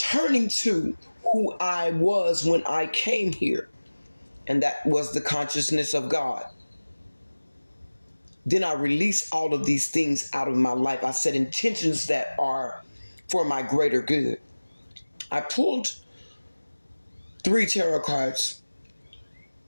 to who I was when I came here, and that was the consciousness of God. Then I release all of these things out of my life. I set intentions that are for my greater good. I pulled 3 tarot cards.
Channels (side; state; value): both; inverted; correlation -1.00